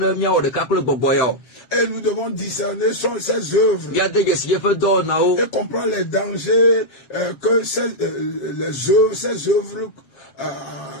nous devons discerner ces œuvres et comprendre les dangers que ces œuvres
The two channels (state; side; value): late; right; 7.3 ms